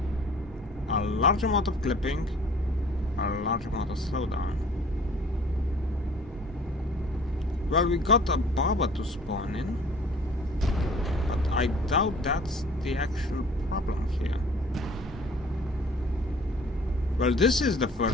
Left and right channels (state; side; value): normal; both; correlation 0.51